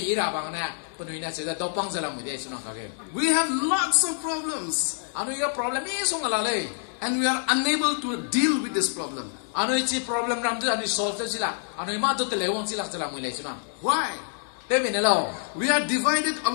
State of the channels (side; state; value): right; silent; digital silence